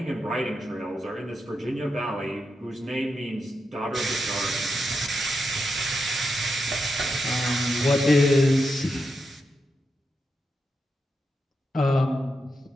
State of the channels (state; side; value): normal; both; correlation 0.86